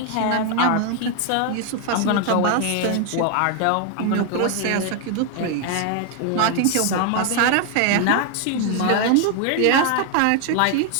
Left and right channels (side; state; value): both; different; correlation 0.00